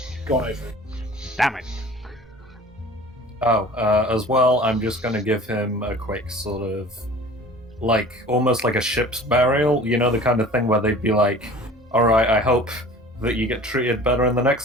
gone over it. Damn it. As well, I'm just going to give him a quick sort of, almost like a ship's burial. You know, the kind of thing where they'd be like, alright, I hope that you get treated better in the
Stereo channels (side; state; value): both; normal; correlation 0.44